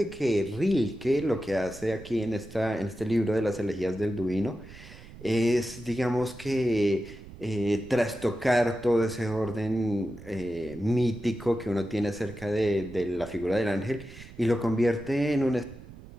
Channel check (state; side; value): noise; right; rumble, 17 dB below the sound